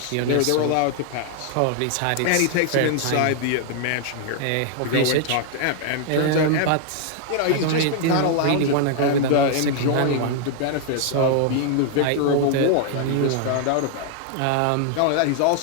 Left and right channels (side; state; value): both; different; correlation 0.00